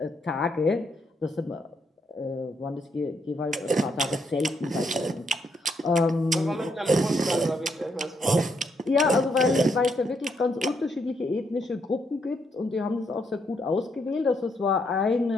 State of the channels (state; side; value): normal; both; correlation 0.76